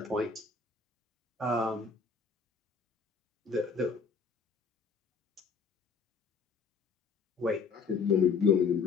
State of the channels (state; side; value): quieter; right; 5.1 dB